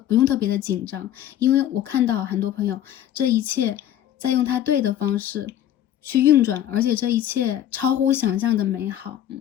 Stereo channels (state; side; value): quieter; right; 11.4 dB